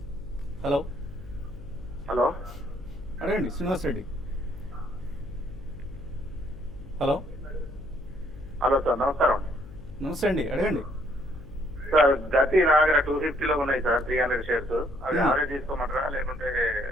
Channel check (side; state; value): left; noise; hum, 18 dB below the sound